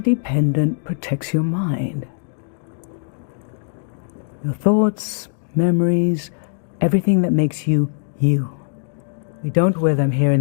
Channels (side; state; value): right; silent; digital silence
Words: pendant protects your mind. Your thoughts, memories, everything that makes you, you. We don't wear them here